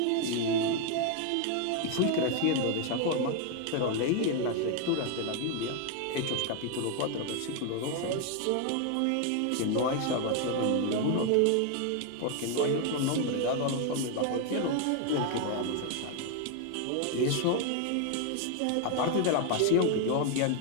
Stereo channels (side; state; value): both; different; correlation 0.01